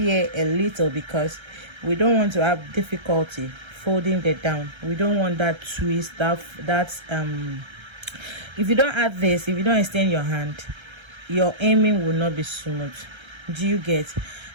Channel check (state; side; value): late; left; 1.3 ms